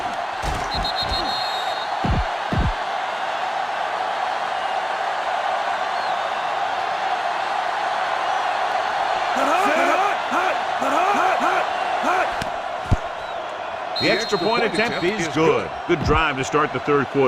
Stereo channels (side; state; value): both; identical; correlation 1.00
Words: The extra point attempt is good. Good drive to start the 3rd